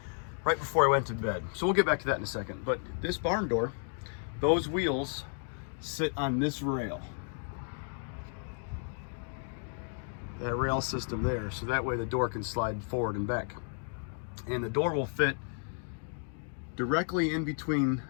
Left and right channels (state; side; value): silent; right; 56 dB below the other